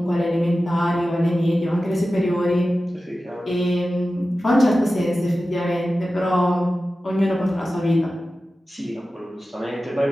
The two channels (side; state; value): both; normal; correlation 0.94